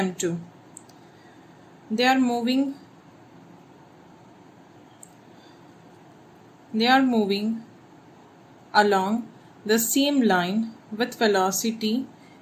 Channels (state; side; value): identical; both; correlation 1.00